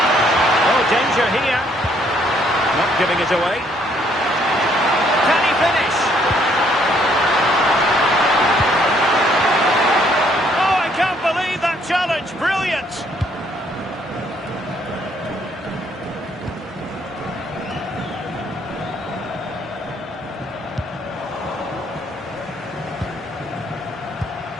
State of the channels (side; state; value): both; normal; correlation 0.67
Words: Oh, danger here. Not giving it away. Can he finish? Oh, I can't believe that challenge. Brilliant.